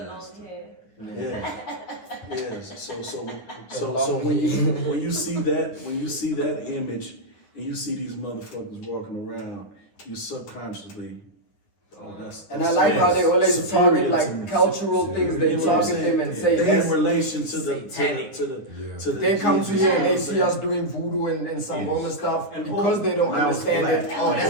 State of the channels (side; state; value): right; late; 9.7 ms